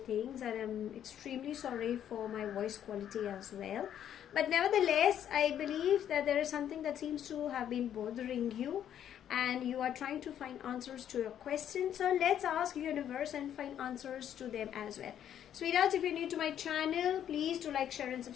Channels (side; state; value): right; quieter; 10.1 dB